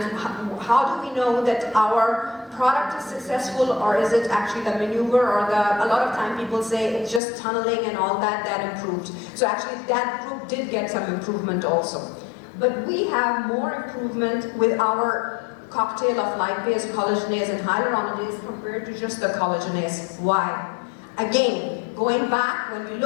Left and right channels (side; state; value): right; drops out; at 7.2 s